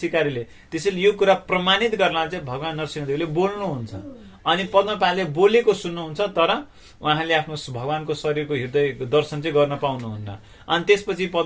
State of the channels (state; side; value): identical; both; correlation 1.00